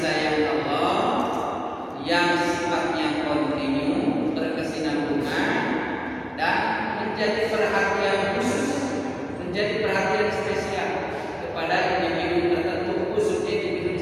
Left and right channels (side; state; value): both; identical; correlation 1.00